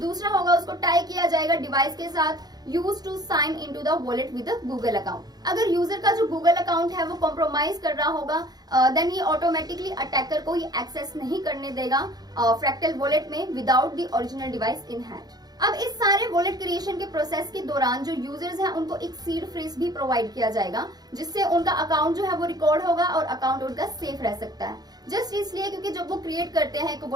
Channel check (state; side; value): late; left; 0.19 ms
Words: होगा उसको टाई किया जाएगा डिवाइस के साथ use to sign into the wallet with Google account. अगर यूजर का जो गूगल अकाउंट है वो कॉम्प्रोमाइज कर रहा होगा देन ये ऑटोमेटिकली अटैकर को ये एक्सेस नहीं करने देगा फ्रैक्टल वॉलेट में without the original device in hand. अब इस सारे वॉलेट क्रिएशन के प्रोसेस के दौरान जो यूजर्स हैं उनको एक सीड फ्रेज भी प्रोवाइड किया जाएगा, जिससे उनका अकाउंट जो है वो रिकॉर्ड होगा और अकाउंट उनका सेफ रह सकता है। जस्ट इसलिए क्योंकि जब वो क्रिएट करते हैं एक